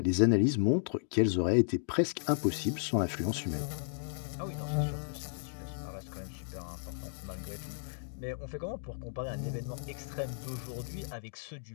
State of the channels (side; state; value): right; silent; digital silence